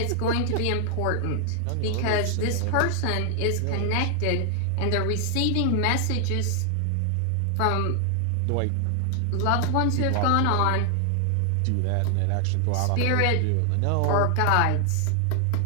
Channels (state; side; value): different; both; correlation 0.00